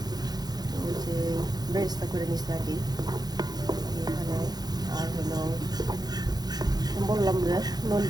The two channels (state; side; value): late; left; 0.19 ms